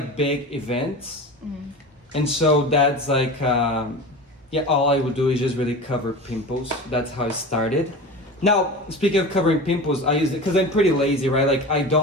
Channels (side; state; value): both; normal; correlation 0.31